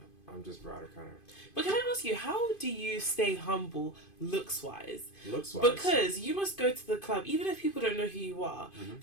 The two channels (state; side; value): late; right; 2.5 ms